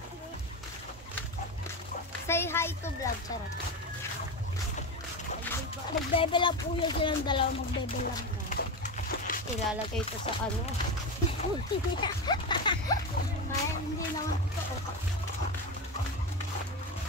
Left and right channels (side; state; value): both; normal; correlation 0.19